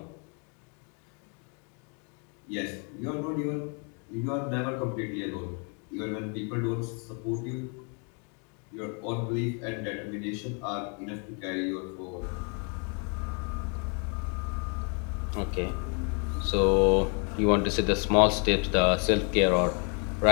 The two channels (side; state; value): right; quieter; 37.6 dB